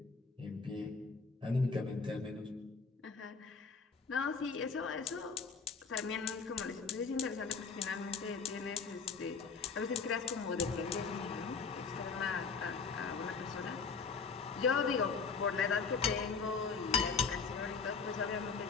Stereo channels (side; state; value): right; quieter; 5.1 dB